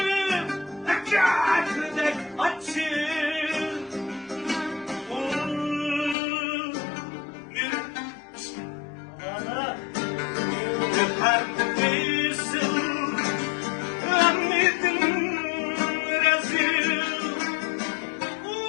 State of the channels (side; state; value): right; drops out; at 6.2 s